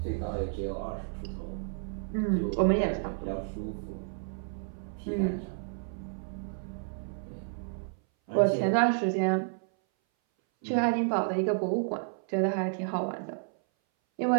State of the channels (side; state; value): left; silent; 57 dB below the other